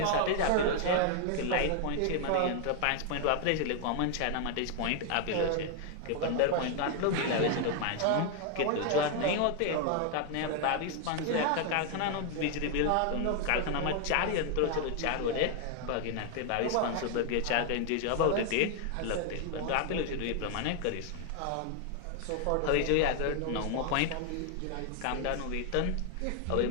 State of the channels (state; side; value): different; both; correlation 0.00